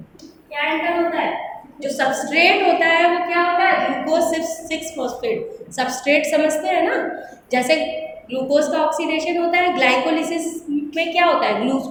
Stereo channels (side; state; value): both; identical; correlation 1.00